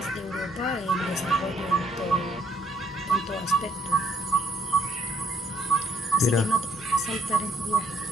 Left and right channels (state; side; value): normal; both; correlation 0.68